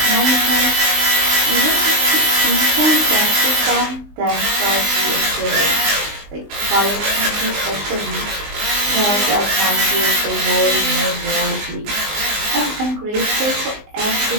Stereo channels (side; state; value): left; late; 19 ms